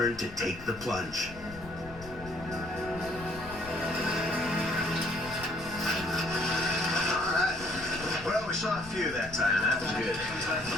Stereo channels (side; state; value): left; noise; rumble, 16 dB below the sound